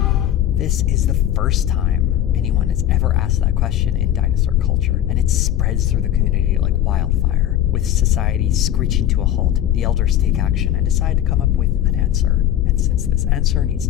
This is the first time anyone has ever asked that question in dinosaur culture, and it spreads through the community like wildfire. With society screeching to a halt, the elders take action and decide to come up with an answer. And since this answer needs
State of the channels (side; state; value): right; quieter; 11.6 dB